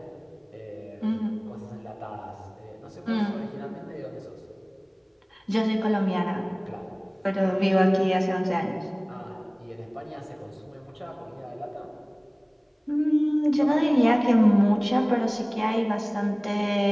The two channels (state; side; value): identical; both; correlation 1.00